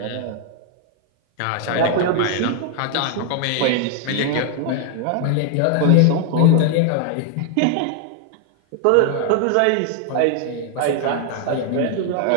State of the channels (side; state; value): both; different; correlation 0.00